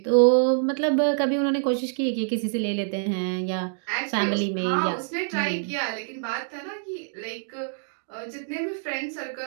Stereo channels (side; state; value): left; silent; digital silence